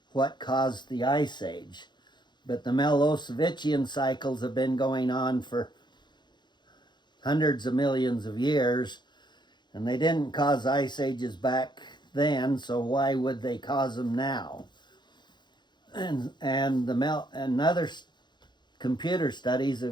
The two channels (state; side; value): late; right; 0.21 ms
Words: what caused the Ice Age. But the Milankovitchian cycles have been going on for hundreds of millions of years, and they didn't cause ice ages back then, so why would they cause them now? And other computer studies